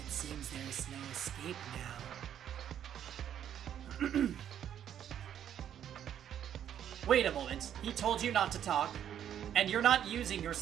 It seems there is no escape now. Wait a moment, he told you not to talk, and you're not using your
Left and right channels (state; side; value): quieter; left; 9.9 dB